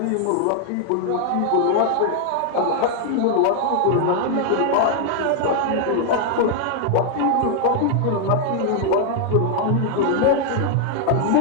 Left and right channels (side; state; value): both; different; correlation 0.00